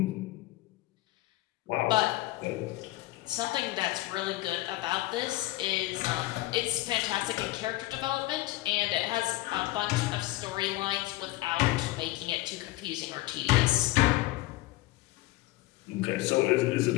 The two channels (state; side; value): quieter; right; 17.9 dB